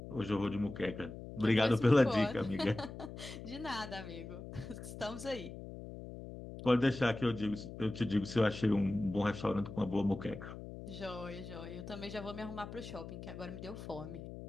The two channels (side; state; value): left; noise; hum, 11 dB below the sound